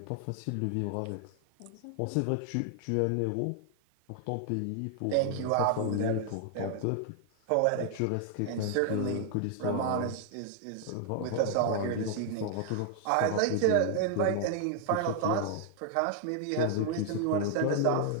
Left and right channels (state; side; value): different; both; correlation 0.00